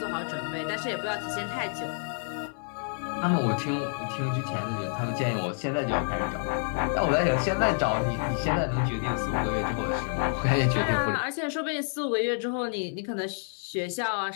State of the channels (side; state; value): right; silent; 59 dB below the other